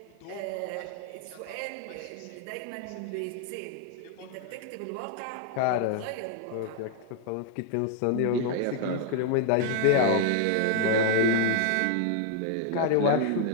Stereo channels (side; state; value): both; different; correlation 0.00